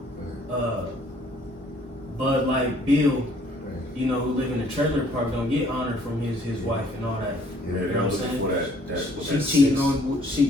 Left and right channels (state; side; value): normal; both; correlation 0.60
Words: But like Bill, who live in a trailer park, don't get honor from his wife and all that. Yeah, You know what I'm saying? for that. She